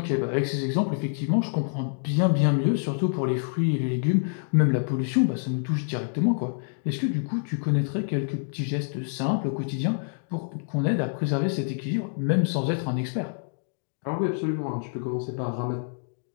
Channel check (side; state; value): right; silent; digital silence